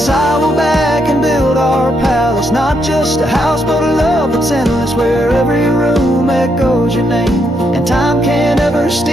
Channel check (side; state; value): both; normal; correlation 0.77